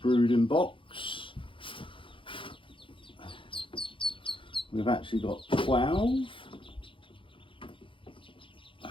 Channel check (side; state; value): right; late; 0.25 ms